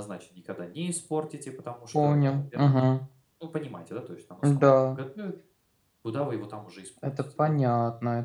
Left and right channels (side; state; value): both; identical; correlation 1.00